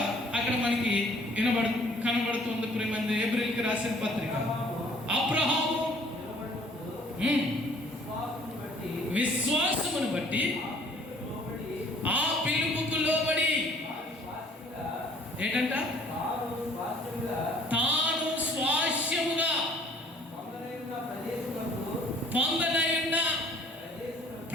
అక్కడ మనకి కనబడుతుంది. ప్రియమంది, ఏప్రిల్కి రాసిన పత్రిక. అబ్రహాము విశ్వాసమును బట్టి ఆ పిలుపుకు లోబడి ఏంటంట? తాను స్వాస్థ్యముగా పొందనయున్న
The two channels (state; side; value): normal; both; correlation 0.57